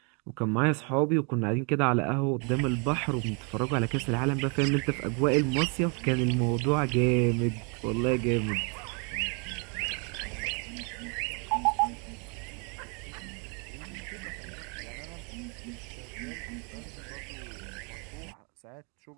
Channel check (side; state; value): left; quieter; 35.4 dB